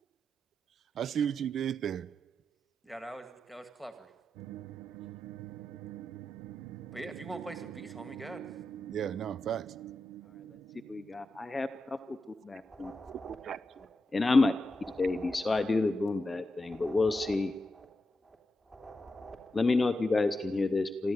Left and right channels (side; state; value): both; normal; correlation 0.88